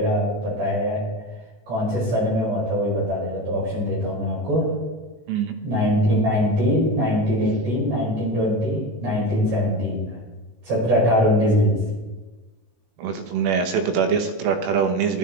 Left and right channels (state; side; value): late; left; 18 ms